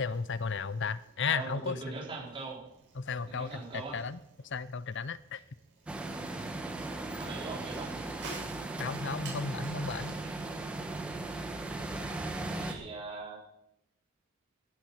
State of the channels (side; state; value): both; normal; correlation 0.44